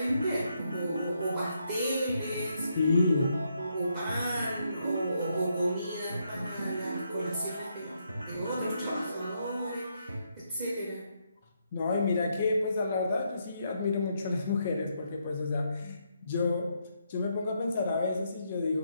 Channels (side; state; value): both; inverted; correlation -0.78